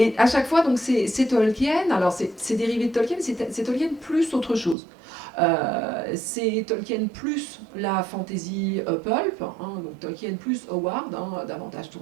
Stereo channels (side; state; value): left; drops out; at 4.8 s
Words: à chaque fois, donc c'est Tolkien, alors c'est dérivé de Tolkien, c'est Tolkien plus autre chose. C'est Tolkien plus la fantasy pulp, donc Tolkien plus Howard, davantage